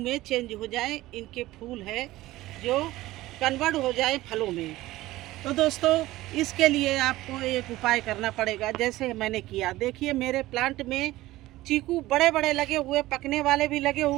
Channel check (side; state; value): left; quieter; 17.2 dB